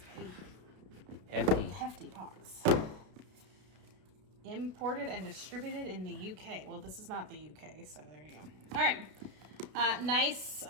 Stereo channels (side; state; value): left; late; 32 ms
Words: a hefty box. Imported and distributed in the UK. Well, this is not the UK, so there you go. All right. Nice